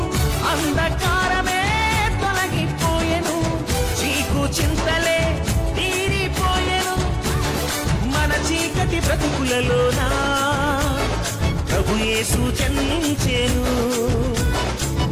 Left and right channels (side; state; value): both; identical; correlation 1.00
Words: అంధకారమే తొలగిపోయెను, చీకు చింతలే తీరిపోయెను. మన చీకటి బ్రతుకులలోన ప్రభు యేసు జన్మించెను.